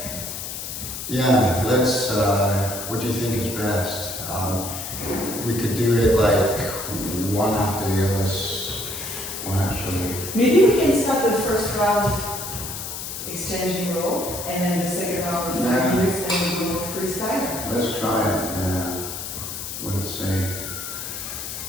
yeah, let's, what do you think is best? We could do it like one after the other, well actually, maybe we can start the first round exchanging role, and then the second round of 5 Yeah. minutes, and we go freestyle. let's try it, yeah. Let's see.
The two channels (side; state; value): left; noise; hiss, 7 dB below the sound